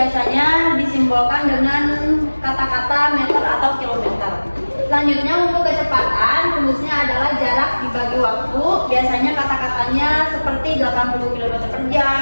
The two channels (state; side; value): inverted; both; correlation -1.00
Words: disimbolkan dengan kata-kata meter atau kilometer. Selanjutnya untuk kecepatan, rumusnya adalah jarak dibagi waktu, biasanya kata-katanya seperti 80 km per